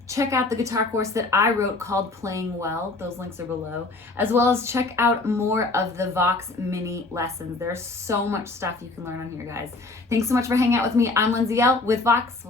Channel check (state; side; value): quieter; right; 3.3 dB